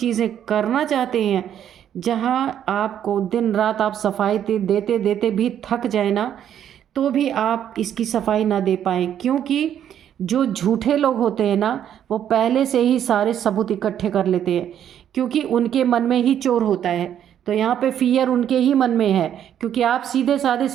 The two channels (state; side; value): quieter; left; 9.9 dB